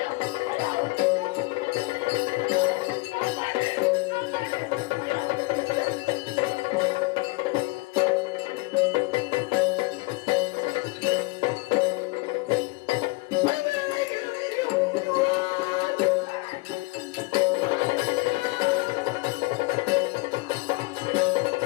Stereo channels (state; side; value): quieter; right; 25.1 dB